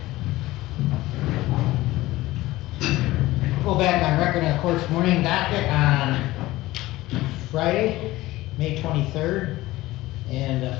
Go back on record in the court's morning docket on Friday, May 23rd. And the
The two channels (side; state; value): right; quieter; 17.9 dB